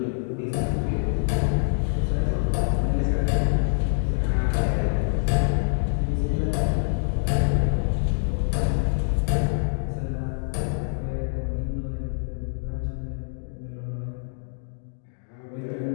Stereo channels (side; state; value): right; silent; digital silence